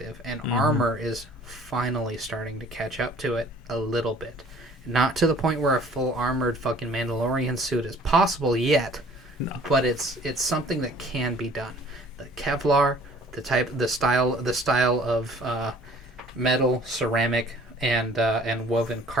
and armor is finally starting to catch up to it a little bit. Not to the point where a full armored fucking Mandalorian suit is possible yet, but it's something that can be done. The Kevlar, the style of metal, ceramic, and woven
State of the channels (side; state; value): both; normal; correlation 0.52